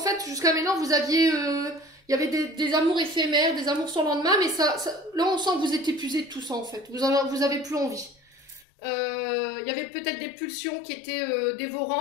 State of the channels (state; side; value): drops out; right; at 8.7 s